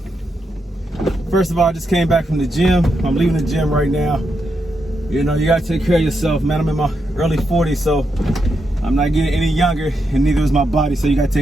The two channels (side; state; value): both; normal; correlation 0.83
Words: First of all, I just came back from the gym. I'm leaving the gym right now. You know, you gotta take care of yourself, man. I'm in my early 40s, so I'm not getting any younger, and neither is my body, so you gotta